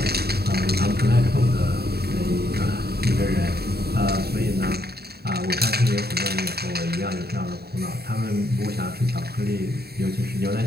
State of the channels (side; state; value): left; late; 0.46 ms